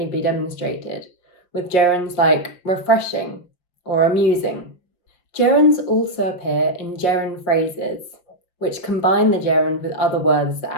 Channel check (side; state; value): right; late; 5.7 ms